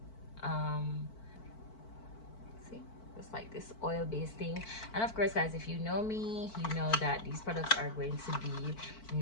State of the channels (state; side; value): late; right; 4.5 ms